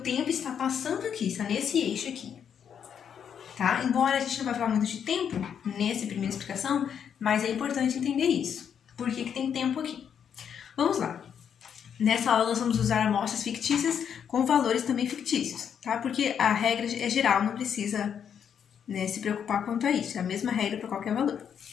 tempo está passando aqui, está nesse eixo aqui. Tá? Embora a gente não vai falar muito de tempo nessa primeira explicação, mas é importante entender isso. Por que tem tempo aqui? Vamos lá. Nessa aula nós vamos usar amostras fictícias com valores também fictícios, tá? Porque a regra é geral, não precisa, né, se preocupar quanto a isso. É a mesma regra para qualquer valor.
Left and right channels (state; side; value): quieter; right; 8.1 dB